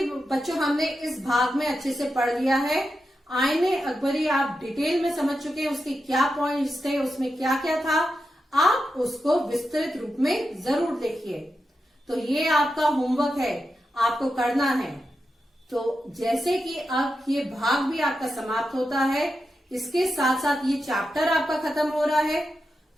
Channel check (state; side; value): normal; both; correlation 0.89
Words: बच्चों हमने इस भाग में अच्छे से पढ़ लिया है। आईने अकबरी आप डिटेल में समझ चुके हैं, उसके क्या पॉइंट्स थे, उसमें क्या क्या था। आप उसको विस्तृत रूप में जरूर देखिए। तो ये आपका होमवर्क है, आपको करना है। तो जैसे कि अब ये भाग भी आपका समाप्त होता है, इसके साथ साथ ये चैप्टर आपका खत्म हो रहा है,